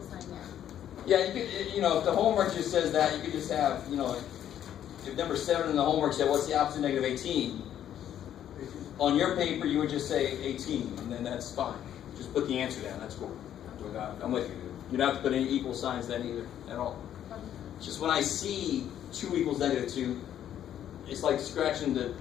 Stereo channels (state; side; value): quieter; right; 10.6 dB